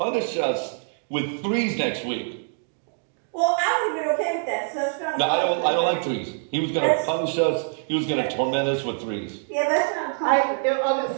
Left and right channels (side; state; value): left; silent; digital silence